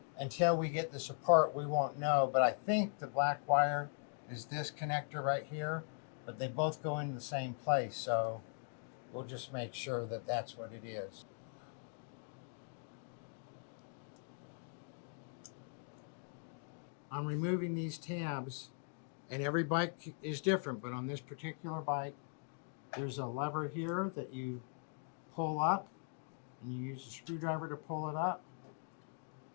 until we get this apart, we won't know. But I think the black wire is this connector right here, but they both go in the same place. So we'll just make sure that that's what it is. I'm removing these tabs, and every bike is different, but on this particular bike, there's a lever here that you pull up, and you use a screwdriver to pull it up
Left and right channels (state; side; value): silent; right; 51 dB below the other